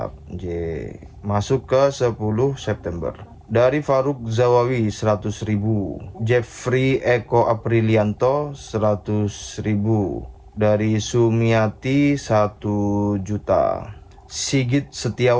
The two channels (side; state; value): both; identical; correlation 1.00